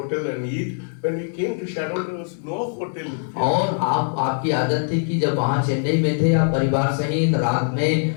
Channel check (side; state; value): right; silent; digital silence